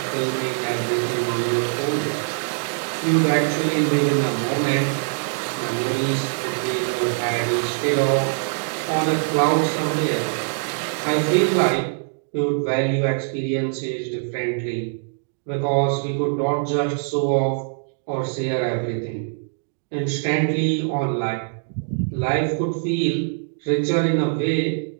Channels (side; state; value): left; silent; digital silence